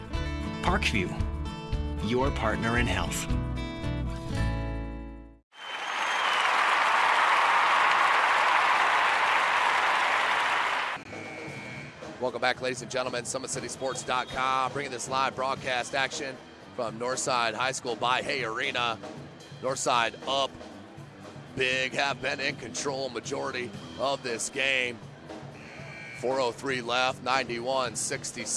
Parkview, your partner in health. Welcome back, ladies and gentlemen. SummitCitySports.com bringing this live broadcast action from Northside High School by Hay Arena. Northside up big, have been in control majority of this game. 4:03 left,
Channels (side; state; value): both; identical; correlation 1.00